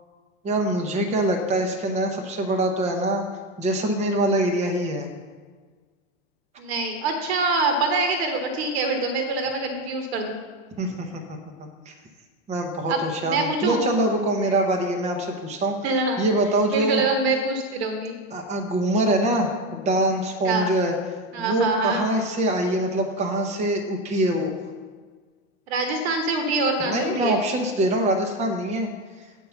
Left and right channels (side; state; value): both; normal; correlation 0.15